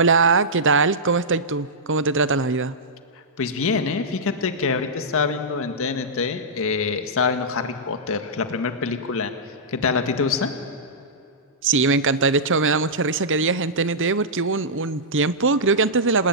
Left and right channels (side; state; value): both; normal; correlation -0.13